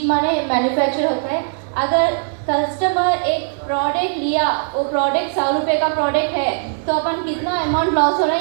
माने मैन्युफैक्चर होता है. अगर कस्टमर एक प्रोडक्ट लिया, वो प्रोडक्ट 100 रुपये का प्रोडक्ट है तो अपन कितना अमाउंट लॉस हो रहा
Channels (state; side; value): silent; left; digital silence